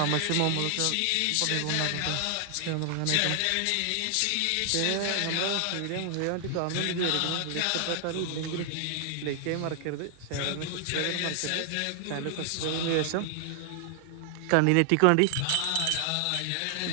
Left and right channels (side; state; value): both; different; correlation 0.00